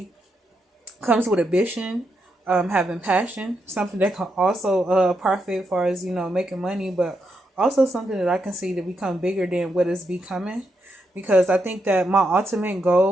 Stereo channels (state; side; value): normal; both; correlation 0.82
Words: comes with ambition, having passion, something that can also profit as far as, making money, but also something that I can see to become bigger than what is becoming. Because I think that my ultimate